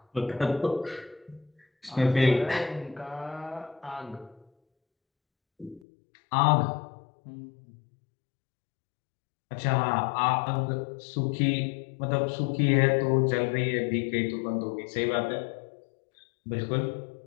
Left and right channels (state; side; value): drops out; right; at 5.8 s